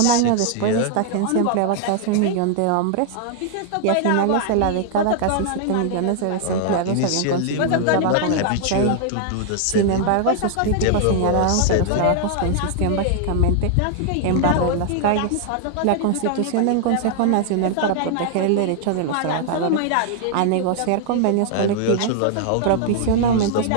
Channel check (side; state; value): both; different; correlation 0.00